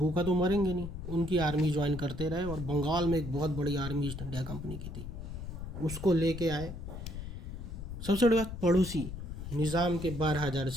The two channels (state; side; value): noise; left; rumble, 8 dB below the sound